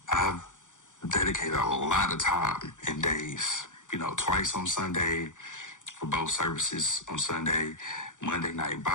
I've dedicated a lot of time and days, twice on Sunday for both services on Sunday, Monday night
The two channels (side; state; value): right; late; 0.86 ms